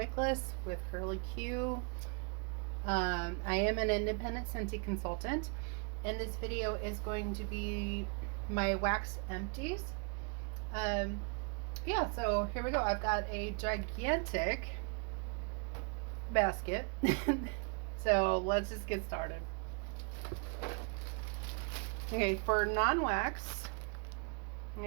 with Curly Q. I am an independent Scentsy consultant, and this video is going to be my wax empties. Um, yeah, so here we go. I've got a gigantic basket. So let's just get started. Okay, for non-wax,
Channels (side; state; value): left; quieter; 37.7 dB